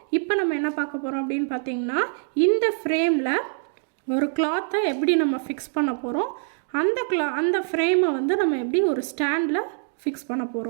இப்போ நம்ம என்ன பார்க்க போறோம் அப்படினு பாத்தீங்கன்னா இந்த ஃப்ரேம்ல ஒரு cloth எப்படி நம்ம ஃபிக்ஸ் பண்ண போறோம் அந்த ஃப்ரேமை வந்து நம்ம எப்படி ஒரு ஸ்டாண்ட்ல ஃபிக்ஸ் பண்ண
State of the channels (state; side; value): silent; left; digital silence